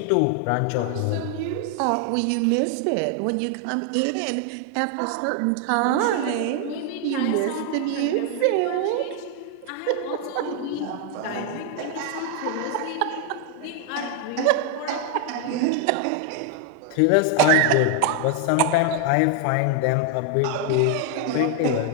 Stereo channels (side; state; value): both; different; correlation 0.00